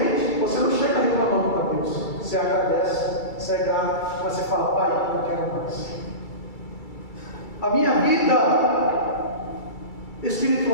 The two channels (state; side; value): late; right; 2.3 ms